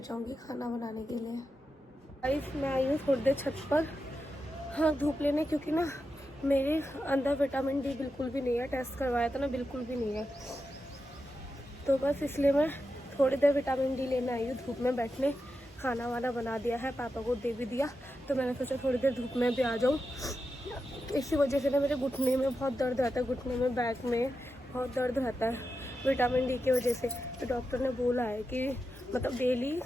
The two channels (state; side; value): normal; both; correlation 0.89